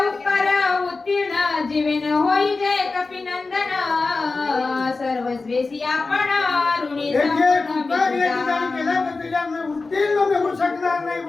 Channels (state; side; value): quieter; right; 3.8 dB